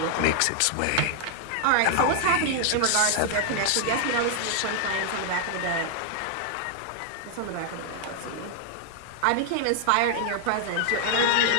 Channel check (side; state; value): both; different; correlation 0.00